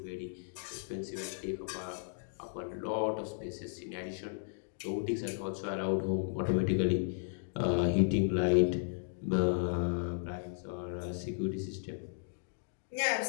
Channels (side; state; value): right; silent; digital silence